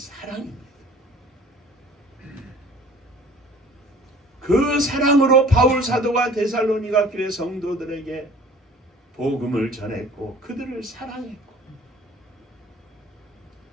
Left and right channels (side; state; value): both; normal; correlation 0.49